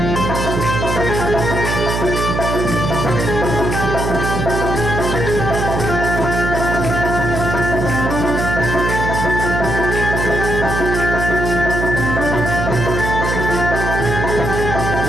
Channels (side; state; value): right; noise; hum, 2 dB below the sound